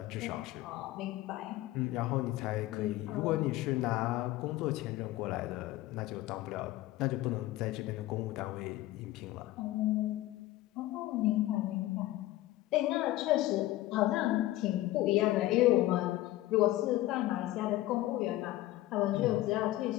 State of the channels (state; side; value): quieter; right; 16.4 dB